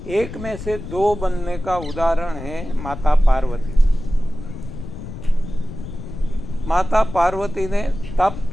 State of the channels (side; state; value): left; noise; rumble, 10 dB below the sound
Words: एक में से 2 बनने का उदाहरण है माता पार्वती। माता पार्वती ने तप